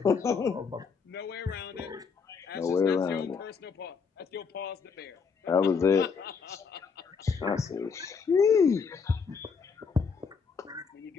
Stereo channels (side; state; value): right; quieter; 5.7 dB